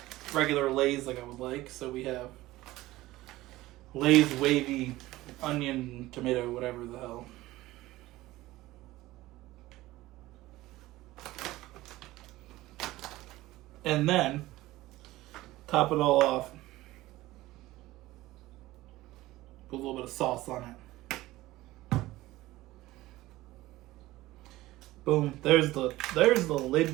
regular Lay's like I would like, so we have Lay's wavy onion, tomato, whatever the hell. And then top it all off. Put a little bit of sauce on it. Boom. There's the lid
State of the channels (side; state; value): left; quieter; 17.5 dB